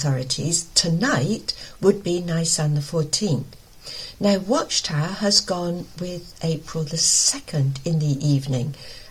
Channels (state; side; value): identical; both; correlation 1.00